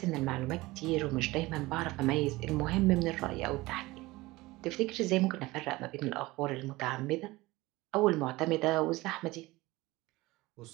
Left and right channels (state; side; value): quieter; left; 20.3 dB